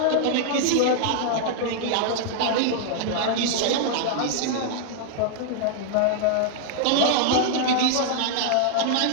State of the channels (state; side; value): different; both; correlation -0.01